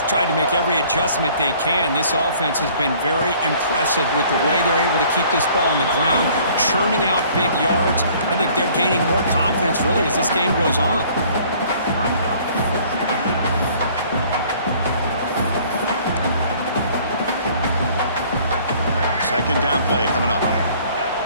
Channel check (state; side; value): inverted; both; correlation -0.55